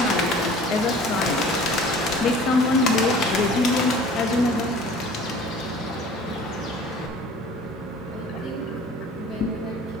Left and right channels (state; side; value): normal; both; correlation 0.47